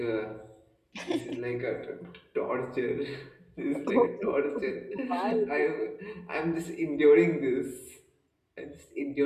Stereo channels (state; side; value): identical; both; correlation 1.00